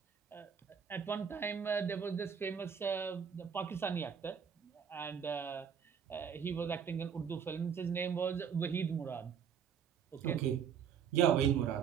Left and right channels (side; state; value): left; quieter; 7.4 dB